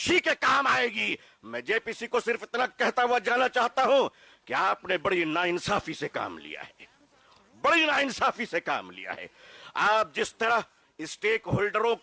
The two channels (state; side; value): identical; both; correlation 1.00